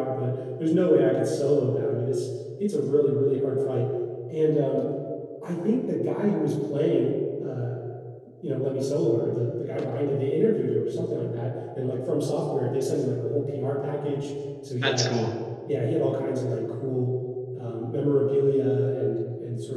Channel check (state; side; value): identical; both; correlation 1.00